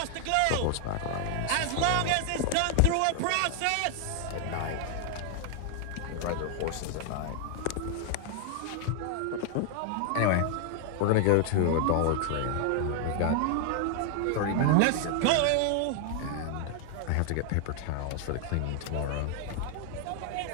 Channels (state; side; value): different; both; correlation 0.00